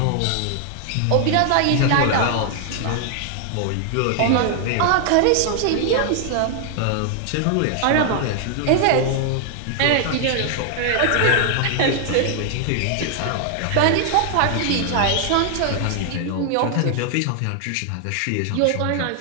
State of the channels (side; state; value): both; different; correlation 0.00